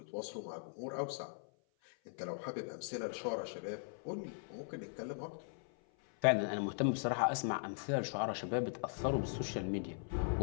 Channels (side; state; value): right; silent; 51 dB below the other